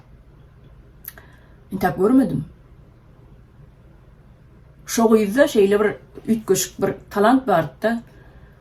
intap görmedim. Şo ýyzda şeýle bir ütgeşik bir talant barda,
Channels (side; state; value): both; identical; correlation 1.00